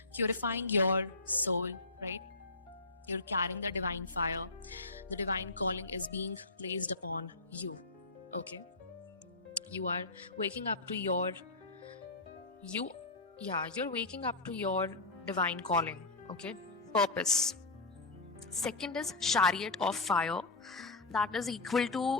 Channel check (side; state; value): right; quieter; 3.3 dB